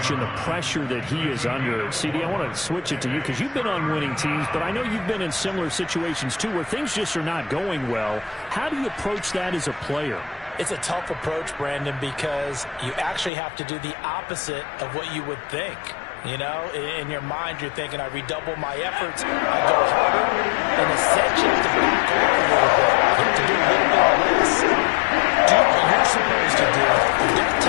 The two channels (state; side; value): drops out; right; at 13.3 s